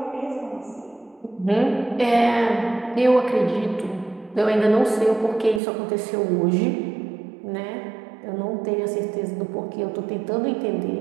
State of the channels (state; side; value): drops out; left; at 5.6 s